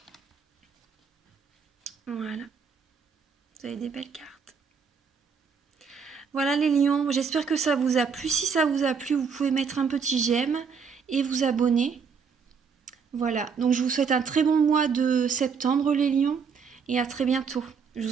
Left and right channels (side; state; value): left; quieter; 6.0 dB